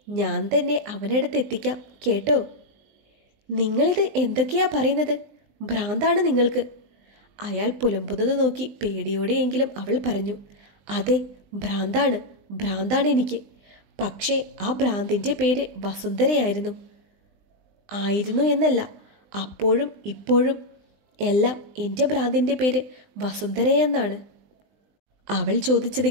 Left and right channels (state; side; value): late; left; 20 ms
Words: ഞാൻ തന്നെ അവനടുത്ത് എത്തിക്കാം കേട്ടോ. നിങ്ങളിത് എന്തൊക്കെയാ പറയുന്നത്? ഭ്രാന്താണ് നിങ്ങൾക്ക്. അയാൾ പുലമ്പുന്നത് നോക്കി പേടിയോടെയെങ്കിലും അവൾ പറഞ്ഞു. അതെ, ഭ്രാന്താണ്, ഭ്രാന്താണ് എനിക്ക്. പക്ഷേ ആ ഭ്രാന്തിൻ്റെ പേര് വസുന്ധരയായിരുന്നു. ആയിരുന്നു എന്നല്ല, അപ്പോഴും ഇപ്പോഴും എല്ലാം എൻ്റെ ഭ്രാന്തിൻ്റെ പേര് വസുന്ധരയെന്നാണ്. അവൾ ചോദിച്ചത്